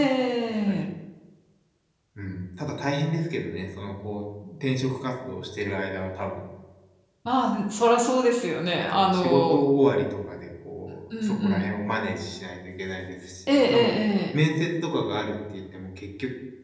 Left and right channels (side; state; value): both; identical; correlation 1.00